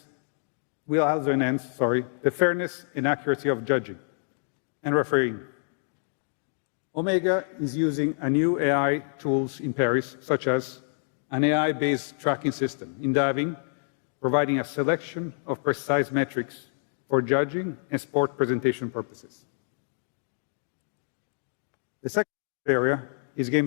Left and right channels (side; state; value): right; silent; digital silence